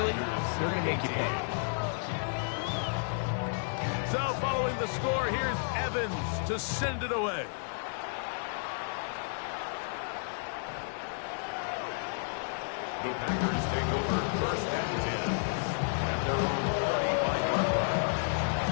they're going to make you pay. So following the score, here's Evans to send it away. The Packers take over first and 10 at their own 35-yard line.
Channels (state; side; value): silent; right; 57 dB below the other